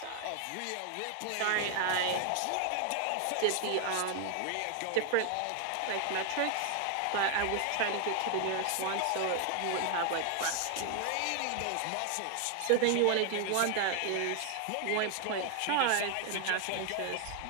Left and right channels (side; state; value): both; different; correlation 0.00